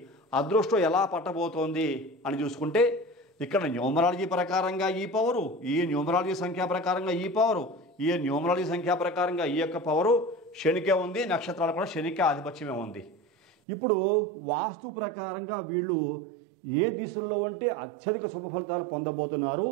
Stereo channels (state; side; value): drops out; left; at 13.5 s